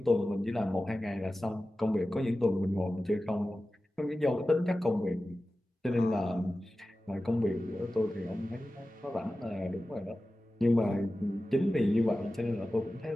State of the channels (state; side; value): normal; both; correlation 0.95